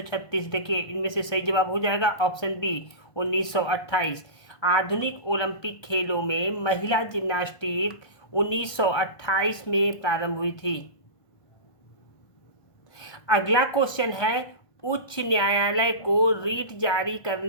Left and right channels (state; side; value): late; right; 1.3 ms